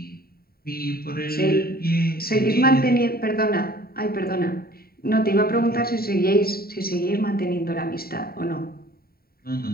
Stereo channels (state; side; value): late; right; 0.44 ms